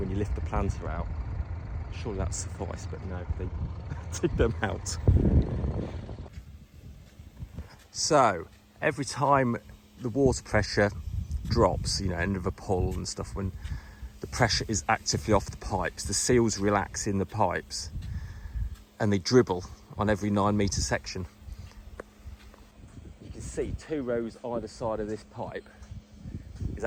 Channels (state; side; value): identical; both; correlation 1.00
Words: you lift the planter out. Surely that suffice, but no, they dig them out. So every time the water pressure drops, you know, end of a pull and stuff, when the pressure is actively off the pipes, the seals relax in the pipes and they dribble on every 9 metre section. You can see 2 rows either side of this pipe is